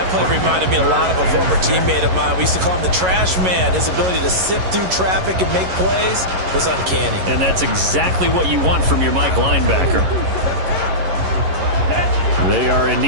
play reminded me a lot of a former teammate of mine. We used to call him the trash man. His ability to sift through traffic and make plays was uncanny. And that's exactly what you want from your Mike linebacker. They are in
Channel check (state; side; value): late; left; 11 ms